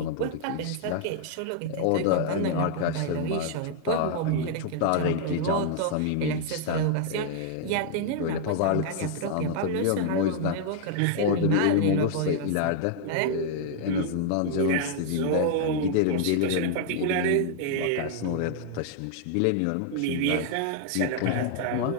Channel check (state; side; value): different; both; correlation -0.01